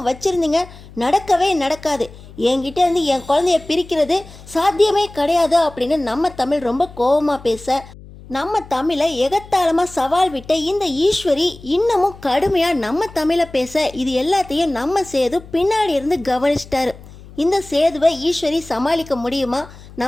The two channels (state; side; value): noise; left; hum, 19 dB below the sound